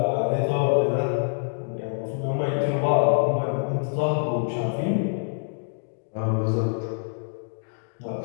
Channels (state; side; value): silent; right; digital silence